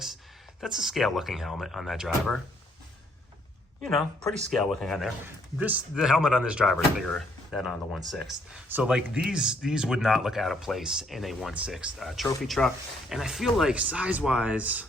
that's a scale looking helmet on that driver. You know, pretty scale looking on there. The helmet on this driver is bigger than on the 1/6. So like these would not look out of place in a 1/6 trophy truck. And I feel like size wise,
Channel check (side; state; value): both; normal; correlation 0.68